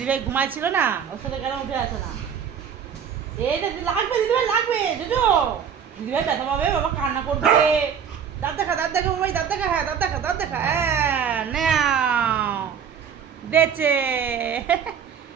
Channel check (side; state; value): left; quieter; 7.6 dB